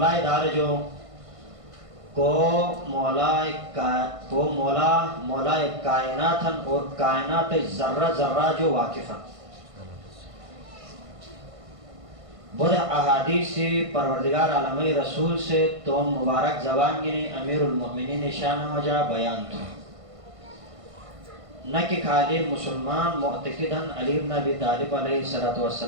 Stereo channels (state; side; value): late; left; 1.5 ms